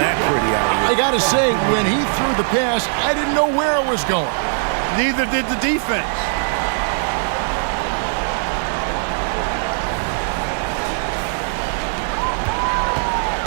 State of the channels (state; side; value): silent; left; 59 dB below the other